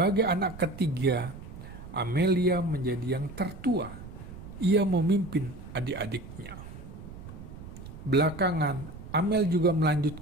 anak ketiga, Amelia menjadi yang tertua. Ia memimpin adik-adiknya. Belakangan, Amel juga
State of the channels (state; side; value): noise; right; rumble, 13 dB below the sound